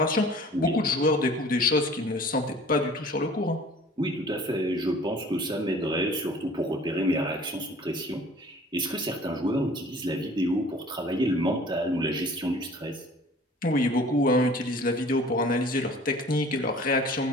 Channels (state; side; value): normal; both; correlation 0.48